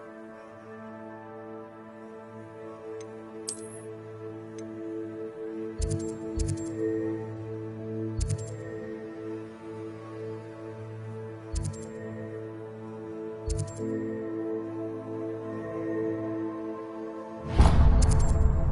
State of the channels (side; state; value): both; identical; correlation 1.00